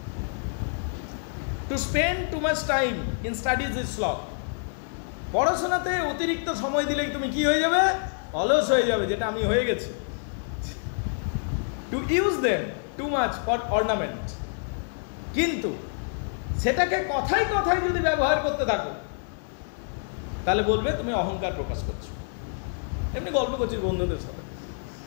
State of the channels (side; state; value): right; silent; digital silence